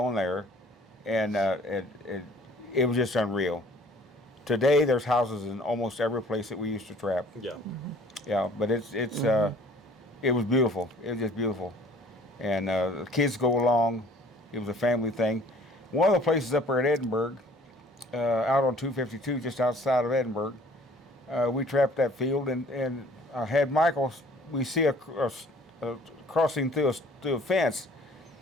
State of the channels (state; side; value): normal; both; correlation 0.54